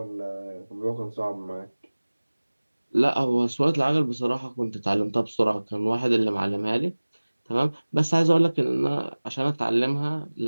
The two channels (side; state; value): both; inverted; correlation -1.00